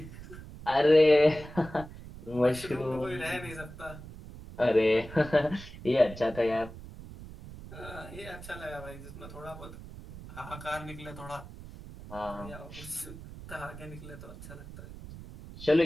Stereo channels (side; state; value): right; noise; rumble, 14 dB below the sound